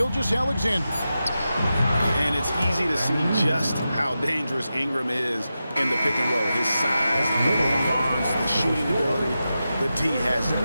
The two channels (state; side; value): inverted; both; correlation -0.91